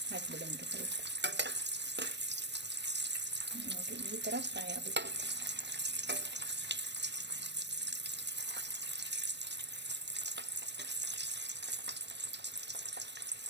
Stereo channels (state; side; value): late; left; 0.50 ms